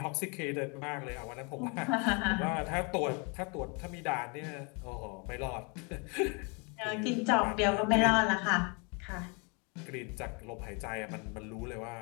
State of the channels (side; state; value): right; quieter; 32.8 dB